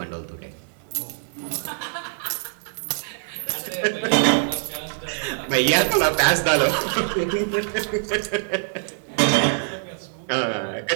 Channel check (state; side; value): silent; left; digital silence